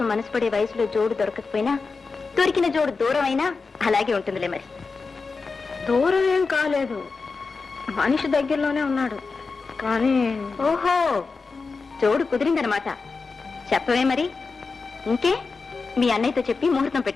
మనసు పడే వయసులో జోడు దొరకకపోయినా దొరికిన జోడు దూరం అయినా అలాగే ఉంటుందిలే. మరి దూరం ఏం కాలేదు, మనిషి దగ్గరలోనే ఉన్నాడు. కానీ ఓహో, జోడు కుదిరిందనమాట. చెప్పవే మరి. ఇంకే మీ అన్నయ్యతో చెప్పి ముహూర్తం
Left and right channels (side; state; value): right; quieter; 4.4 dB